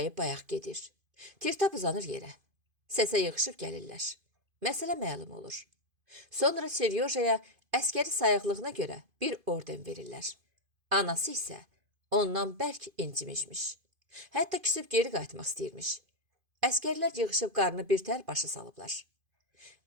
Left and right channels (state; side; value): late; left; 2.5 ms